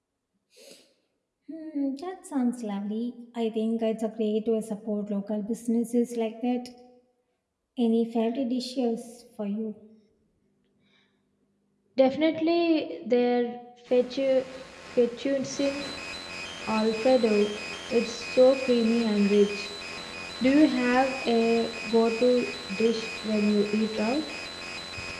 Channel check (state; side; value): identical; both; correlation 1.00